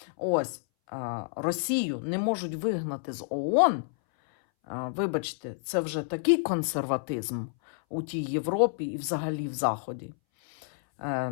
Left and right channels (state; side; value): silent; right; 58 dB below the other